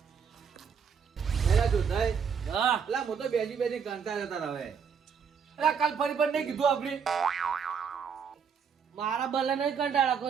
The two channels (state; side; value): quieter; left; 6.7 dB